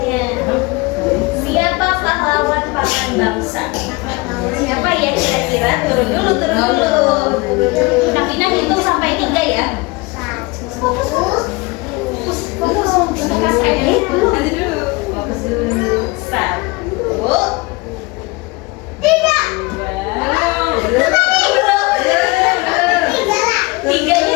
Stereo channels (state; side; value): quieter; right; 24.7 dB